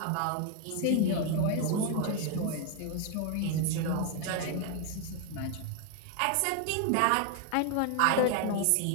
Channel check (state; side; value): different; both; correlation 0.01